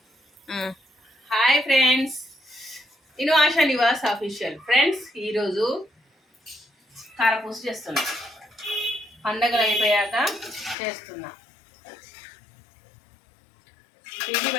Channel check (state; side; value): drops out; right; at 10.8 s